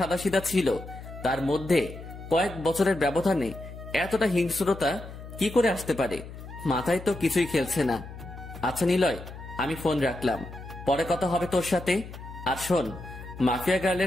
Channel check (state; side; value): noise; left; hum, 13 dB below the sound